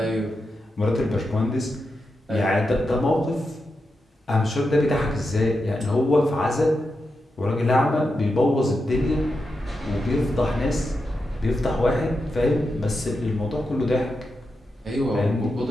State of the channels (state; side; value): normal; both; correlation 0.88